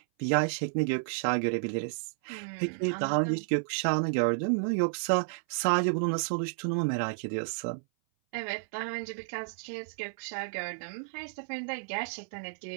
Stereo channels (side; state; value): left; silent; 57 dB below the other